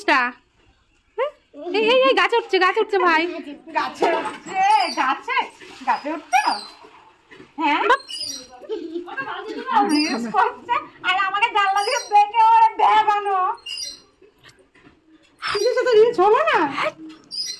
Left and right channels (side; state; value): both; identical; correlation 1.00